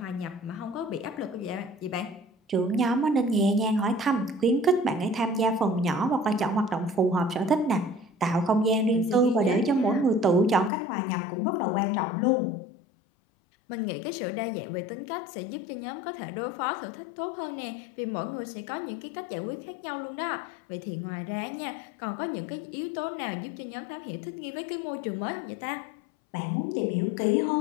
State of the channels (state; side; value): drops out; right; at 10.7 s